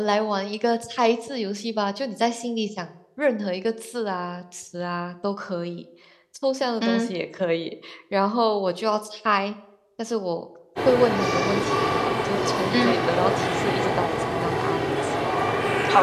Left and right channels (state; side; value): identical; both; correlation 1.00